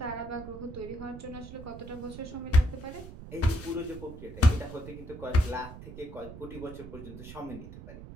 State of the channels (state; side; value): noise; right; rumble, 13 dB below the sound